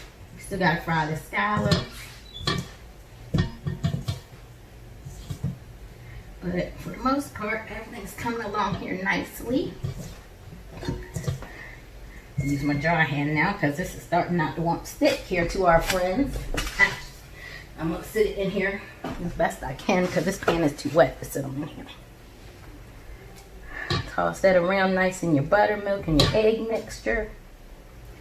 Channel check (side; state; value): both; identical; correlation 1.00